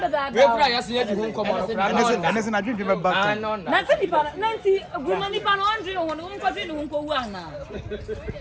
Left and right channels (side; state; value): both; identical; correlation 1.00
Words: that. We pray yes you do come on. And it's not drinking back. Nancy Nipa, Nancy, woman Nipa, Andre, on the country, who go one.